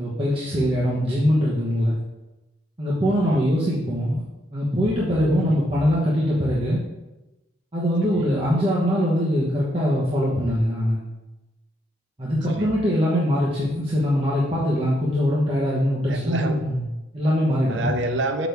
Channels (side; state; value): both; normal; correlation 0.77